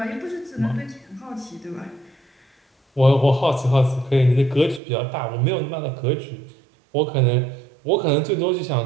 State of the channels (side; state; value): left; drops out; at 4.8 s